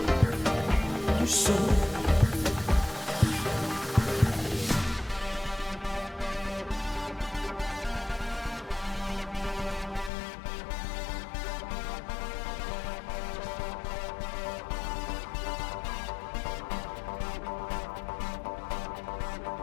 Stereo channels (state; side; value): drops out; right; at 10.1 s